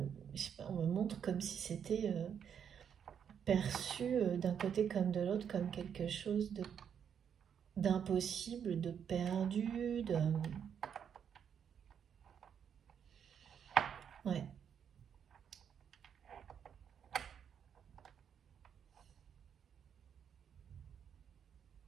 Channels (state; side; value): quieter; left; 8.0 dB